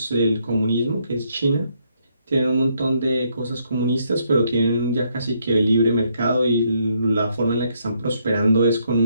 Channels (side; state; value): both; inverted; correlation -0.73